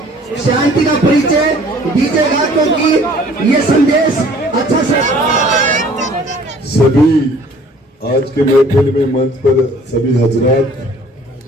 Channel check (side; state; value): both; normal; correlation 0.54